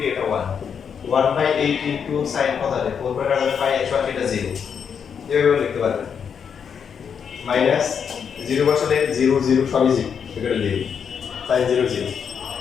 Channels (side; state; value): right; quieter; 7.1 dB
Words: এটা 1 1 by 8 into sin কত আসে 4 by কাটালে pi x1 এটা 0 এভাবে লিখতে পারবেন মাইনাস 0 বসালে 0 0 সবই 0 এটা 0 sin 0 0